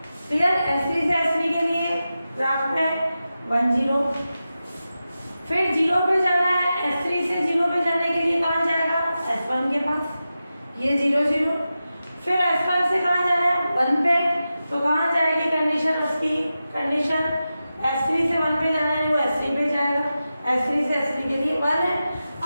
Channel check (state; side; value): inverted; both; correlation -0.92